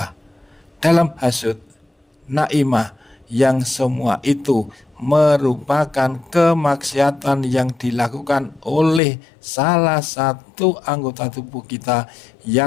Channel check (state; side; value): drops out; right; at 9.0 s